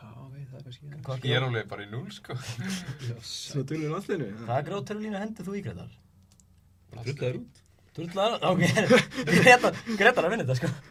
veit það kannski. Ég er alveg bara í 0, sko. Svo tölum við landsliðinu. Hvaða grjóthörðu línu hendið þú í, Gretar? Drullaður út. Drullar? Ok, Gretar að vinna þetta, sko.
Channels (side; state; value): both; identical; correlation 1.00